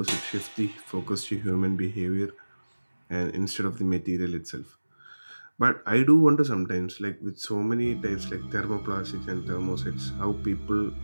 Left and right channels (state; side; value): inverted; both; correlation -1.00